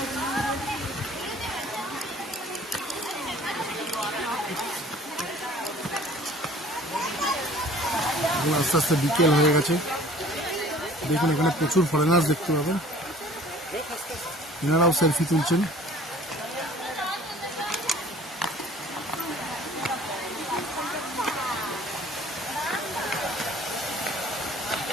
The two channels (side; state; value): both; normal; correlation 0.50